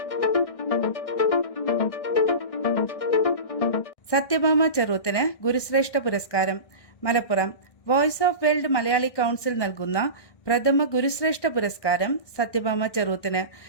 സത്യഭാമ ചെറുത്തിന് ഗുരുശ്രേഷ്ഠ പുരസ്കാരം. Malappuram voice of world Malayali council നൽകുന്ന പ്രഥമ ഗുരുശ്രേഷ്ഠ പുരസ്കാരം സത്യഭാമ ചെറുത്തിന്.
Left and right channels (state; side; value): late; right; 1.6 ms